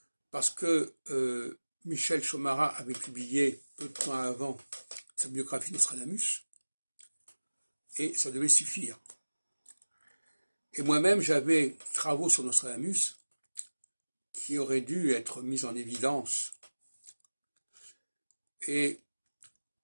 parce que Michel Chomara avait publié peu de temps avant sa biographie Nostradamus, et ça devait suffire. Et moi-même, j'avais des travaux sur Nostradamus qui auraient dû être mis en évidence. Et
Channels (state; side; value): inverted; both; correlation -1.00